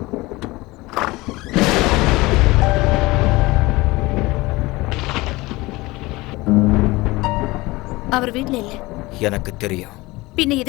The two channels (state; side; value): quieter; right; 21.2 dB